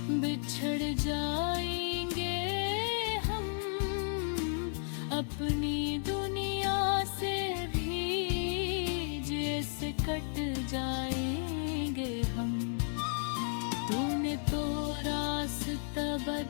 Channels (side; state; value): right; silent; digital silence